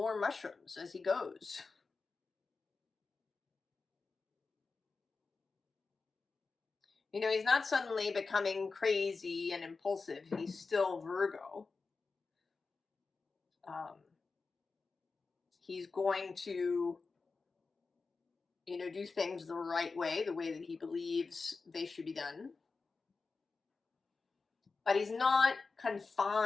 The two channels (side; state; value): right; quieter; 4.3 dB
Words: mushrooms as he goes. He's not suddenly becoming crazy and impulsive. He's still Virgo. He's going to, do things the right way, the way that he believes they should be done. But he's not